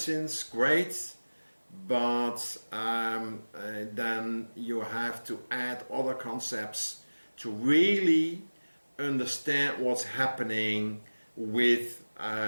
great, but then you have to add other concepts to really understand what's happening with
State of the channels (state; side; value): inverted; both; correlation -1.00